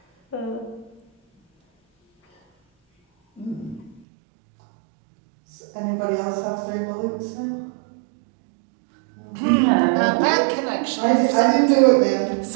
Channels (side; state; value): left; drops out; at 4.0 s